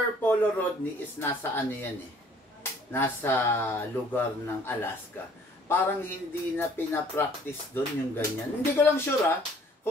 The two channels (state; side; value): normal; both; correlation 0.57